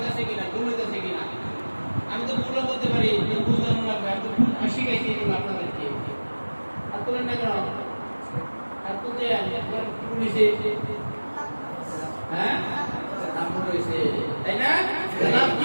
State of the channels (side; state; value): both; inverted; correlation -1.00